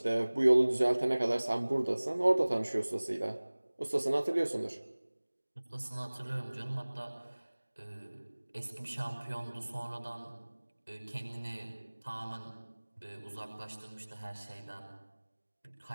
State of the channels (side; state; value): both; inverted; correlation -1.00